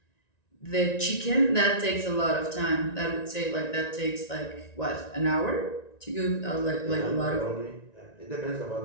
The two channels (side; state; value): right; late; 1.9 ms